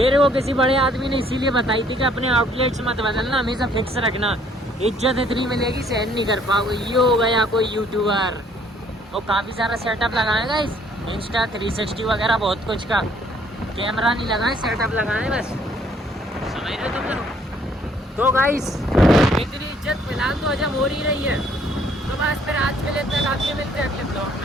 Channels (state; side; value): normal; both; correlation 0.62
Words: को किसी बड़े आदमी ने इसीलिए बताई थी कि अपने आउटलेट्स मत बदलना, हमेशा फिक्स रखना, इज्जत इतनी मिलेगी सहन नहीं कर पाओगे। ये हो गया कोई यूट्यूबर, वो काफ़ी सारा सेटअप लगाएगा इस इंस्टा 360 वगैरह बहुत कुछ का, कैमरा नहीं लगाए, सेटअप लगाए बस, समझ रहे हो तुम लोग। तो गाइस इतनी इज्जत फिलहाल तो हजम हो ही रही है, तो बस फिर आज के लिए इतना काफ़ी, मिलते हैं अगले